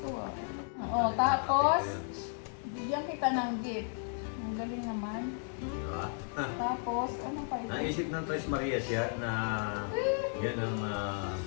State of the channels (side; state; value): right; silent; 55 dB below the other